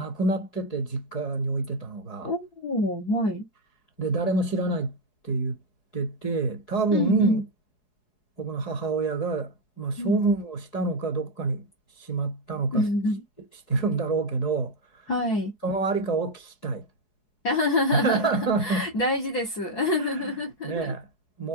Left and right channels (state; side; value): late; right; 4.7 ms